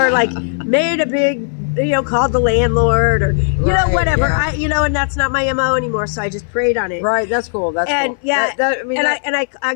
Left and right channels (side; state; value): right; silent; 59 dB below the other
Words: like made a big, you know, called the landlord or, you know, whatever. Yeah. And that's not my MO anymore. So I just prayed on it. Right. That's cool. That's cool. Yeah. I